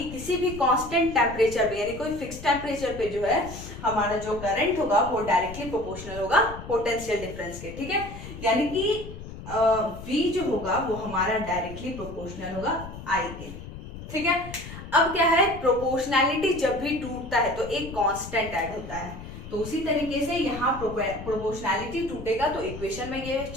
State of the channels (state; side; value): noise; left; rumble, 12 dB below the sound